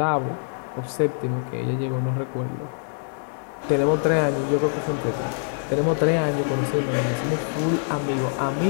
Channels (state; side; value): silent; right; 62 dB below the other